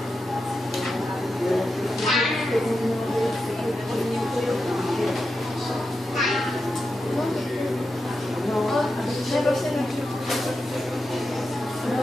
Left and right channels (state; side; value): normal; both; correlation 0.89